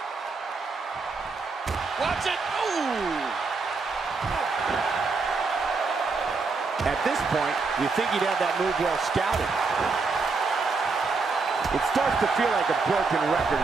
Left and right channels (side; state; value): left; quieter; 4.3 dB